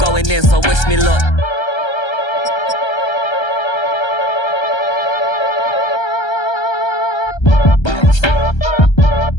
in, so wish me luck.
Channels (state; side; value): late; right; 1.3 ms